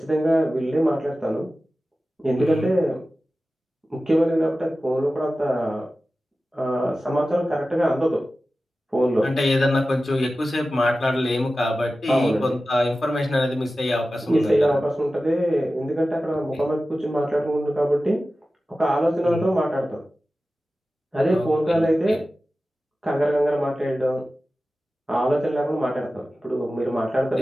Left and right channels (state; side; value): normal; both; correlation 0.95